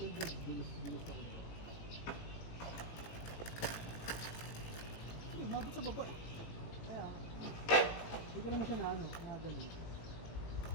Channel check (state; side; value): late; right; 18 ms